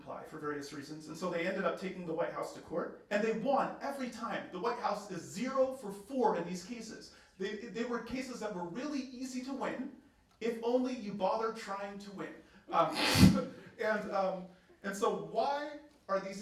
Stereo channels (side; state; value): both; identical; correlation 1.00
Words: for various reasons, and so they ended up taking the White House to court, and they won every time. The White House is 0 for 4 in these cases. They were cases that were really easy to win, if only you bother trying to win. And so why are